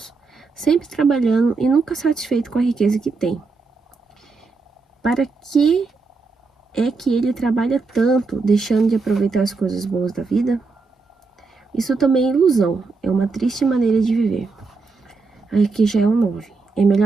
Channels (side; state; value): left; quieter; 4.2 dB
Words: sempre trabalhando e nunca satisfeito com a riqueza que tem. Para que é que ele trabalha tanto, deixando de aproveitar as coisas boas da vida? Isso também é ilusão, é uma triste maneira de viver. Aí aqui já é o 9. É